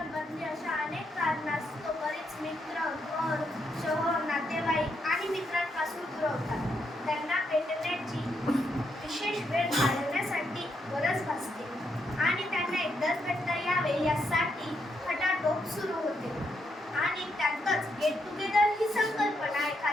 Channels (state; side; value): normal; both; correlation 0.79